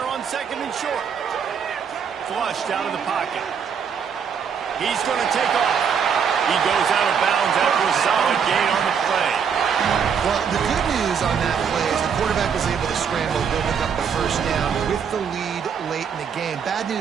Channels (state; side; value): quieter; left; 7.0 dB